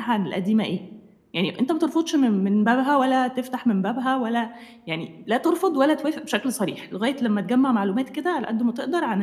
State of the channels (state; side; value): identical; both; correlation 1.00